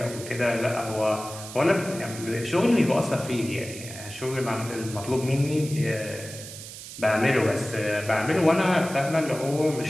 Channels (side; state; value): right; noise; hiss, 13 dB below the sound